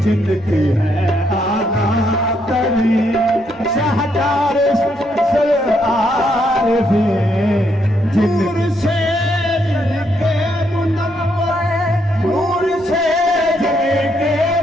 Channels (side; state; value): right; noise; rumble, 28 dB below the sound